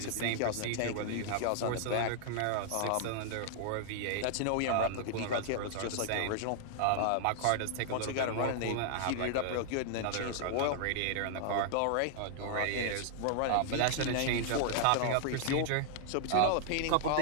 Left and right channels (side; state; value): both; different; correlation -0.01